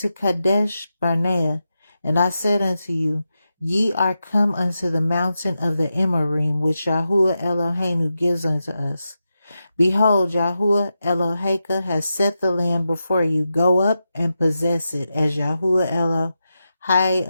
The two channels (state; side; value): inverted; both; correlation -0.89